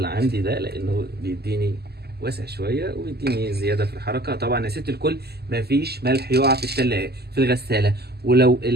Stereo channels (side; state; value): left; late; 0.46 ms